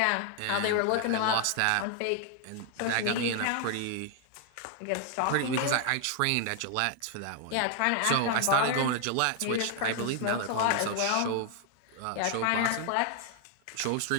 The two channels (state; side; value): different; both; correlation 0.00